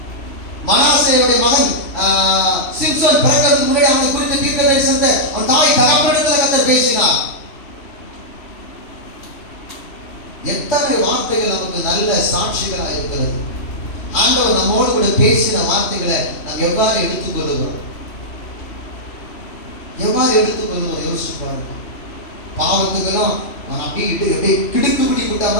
மனாசேயுடைய மகன் சிம்சன் பிறக்கிறதுக்கு முன்னாடி அவனை குறித்த தீர்க்கதரிசனத்தை அவன் தாய் தகப்பனிடத்தில் கர்த்தர் பேசினார். எத்தனை வார்த்தைகள் நமக்கு நல்ல சாட்சிகளாக இருக்கிறது. ஆண்டவர் நம்மோடு கூட பேசின வார்த்தைகளை நாம் எவ்வாறு எடுத்துக்கொள்ளுகிறோம்? யோசிச்சு பாருங்க. பாவத்துக்கெல்லாம் அப்படியே கிடுக்கு பிடி விட்டா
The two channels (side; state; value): right; late; 3.0 ms